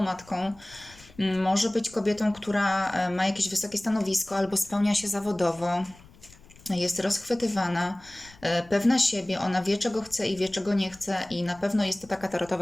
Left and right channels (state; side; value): noise; left; rumble, 24 dB below the sound